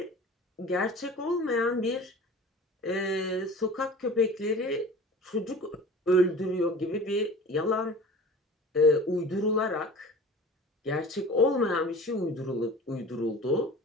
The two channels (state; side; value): normal; both; correlation 0.40